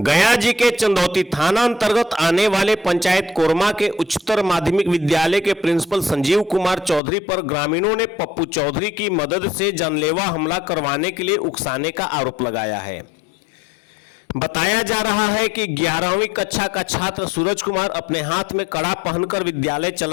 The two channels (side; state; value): right; drops out; at 7.0 s